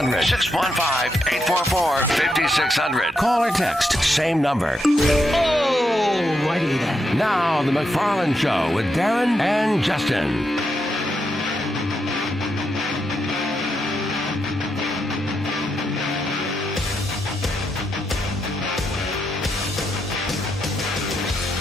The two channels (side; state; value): both; normal; correlation 0.82